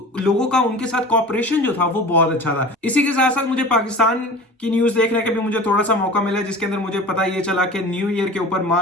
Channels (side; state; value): both; normal; correlation 0.37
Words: लोगों का उनके साथ कॉपरेशन जो था वो बहुत अच्छा था। इसी के साथ साथ मुझे पाकिस्तान की न्यूज देखने का भी मुझे थोड़ा सा मौका मिला, जिसके अंदर मुझे पता ये चला कि न्यू ईयर के ऊपर